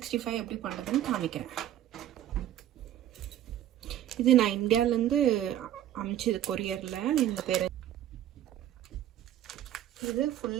எப்படி பண்ணுறதுன்னு காமிக்கிறேன். இது நான் இந்தியாவிலேருந்து அமிச்சது கொரியரில். இந்த பேர் இது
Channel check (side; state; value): left; quieter; 11.9 dB